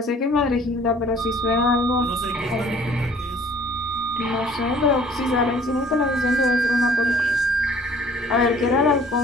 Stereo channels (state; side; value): normal; both; correlation 0.54